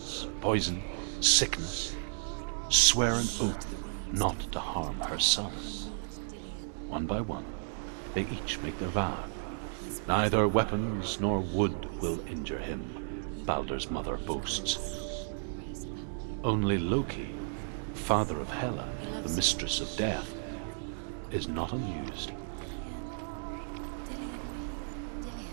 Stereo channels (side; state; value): left; silent; digital silence